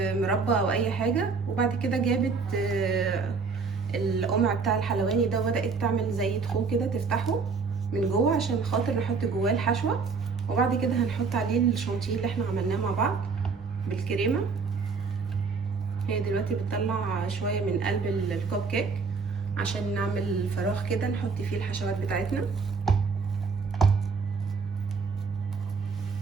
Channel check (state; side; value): quieter; left; 4.9 dB